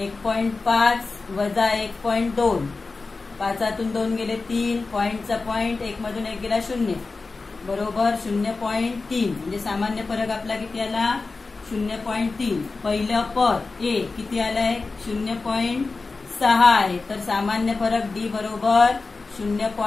वजा 1.2. 5तून 2 गेले 3 पॉइंटचा पॉइंट, 1 मधून 1 गेला 0 बरोबर 0.3. म्हणजे सामान्य फरक आपला किती आला 0.3. पहिलं पद ए किती आलंय 0.6 आहे तर सामान्य फरक डी बरोबर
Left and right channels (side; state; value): right; quieter; 3.9 dB